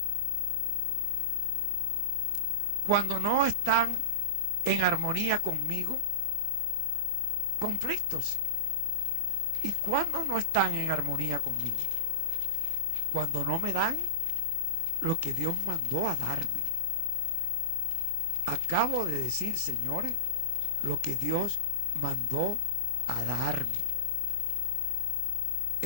cuando no están en armonía conmigo, conflictos. ¿Y cuando no están en armonía conmigo? Cuando no me dan lo que Dios mandó a darme. Acabo de decir, señores, lo que Dios mandó a darme.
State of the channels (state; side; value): late; left; 24 ms